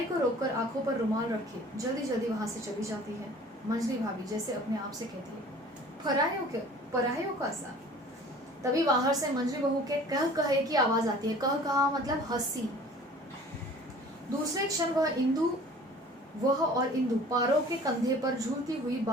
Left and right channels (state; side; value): normal; both; correlation 0.47